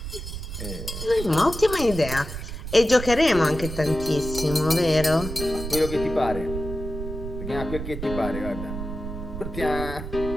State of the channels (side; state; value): right; noise; rumble, 7 dB below the sound